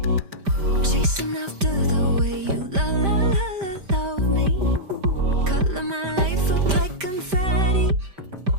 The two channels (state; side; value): late; left; 5.1 ms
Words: chasing after the way you love me. Color my life up like confetti.